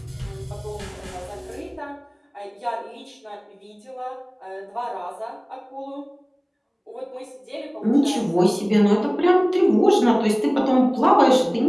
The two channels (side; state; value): both; identical; correlation 1.00